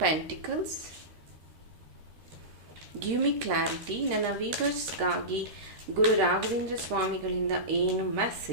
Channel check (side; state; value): left; late; 13 ms